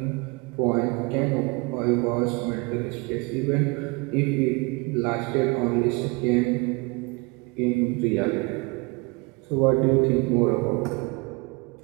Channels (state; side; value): quieter; left; 28.0 dB